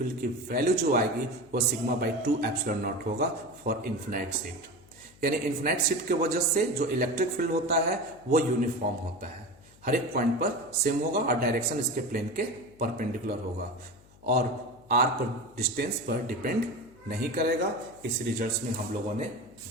की वैल्यू जो आएगी वो सिग्मा बाई 2 एप्सिलॉन नॉट होगा फॉर इन्फिनाइट शीट। यानी इन्फिनाइट शीट की वजह से जो इलेक्ट्रिक फील्ड होता है वो यूनिफॉर्म होता है, हर एक पॉइंट पर सेम होगा और डायरेक्शन इसके प्लेन के परपेंडिकुलर होगा और r पर डिस्टेंस पर डिपेंड नहीं करेगा। इस रिजल्ट्स में हम लोगों ने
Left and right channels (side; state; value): left; noise; hum, 26 dB below the sound